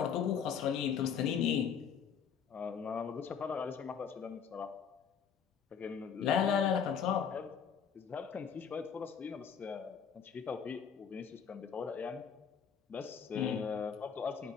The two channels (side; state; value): right; quieter; 7.2 dB